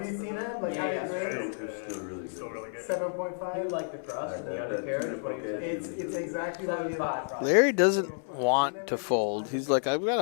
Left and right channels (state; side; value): silent; right; digital silence